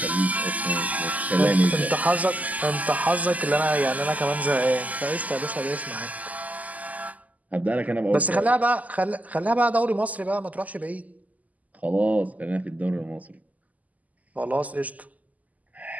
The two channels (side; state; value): left; late; 0.077 ms